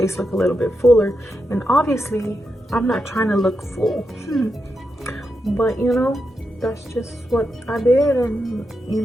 look a little bit fuller. And obviously, I'm not trying to look full. But, you know, that's just what I did. And, you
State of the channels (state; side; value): normal; both; correlation 0.86